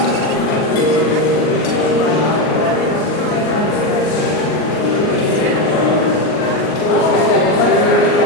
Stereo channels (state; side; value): late; right; 38 ms